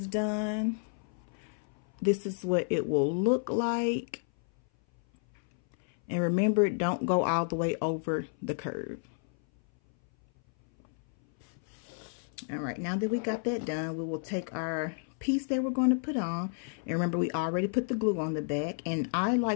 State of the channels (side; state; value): right; silent; 57 dB below the other